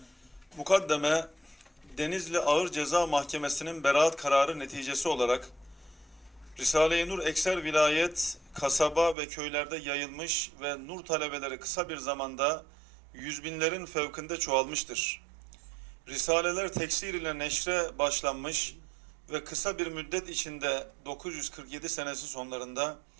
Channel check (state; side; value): drops out; left; at 9.2 s